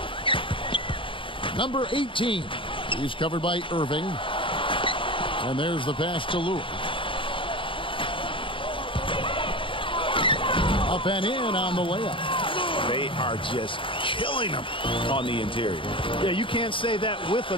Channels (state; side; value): late; right; 0.25 ms